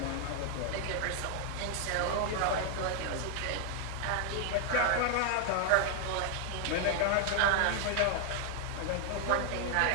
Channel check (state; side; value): different; both; correlation 0.00